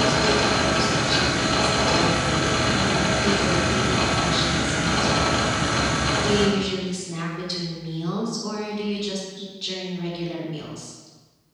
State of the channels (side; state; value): both; identical; correlation 1.00